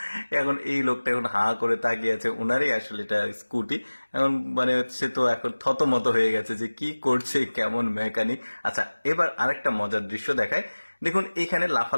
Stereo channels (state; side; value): inverted; both; correlation -1.00